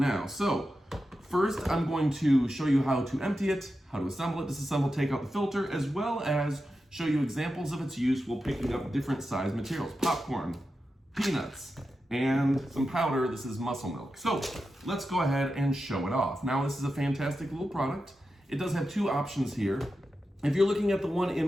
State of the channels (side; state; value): both; normal; correlation 0.90